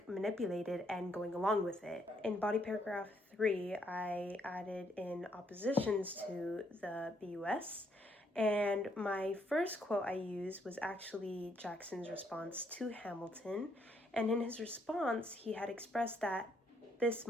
manipulated and going along with it? In body paragraph 3, I added in oppositions to the BUS, and my first quote I used was actually Jackson's response to Hamilton, and in his response, he had expressed that this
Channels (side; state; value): both; normal; correlation 0.72